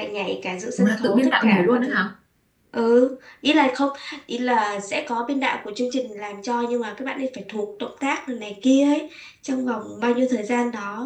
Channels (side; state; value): both; identical; correlation 1.00